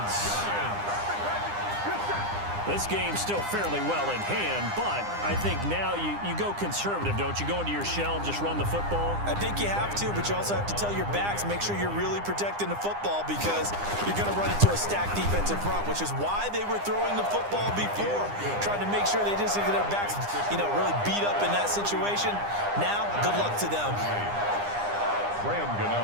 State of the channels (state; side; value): late; left; 9.9 ms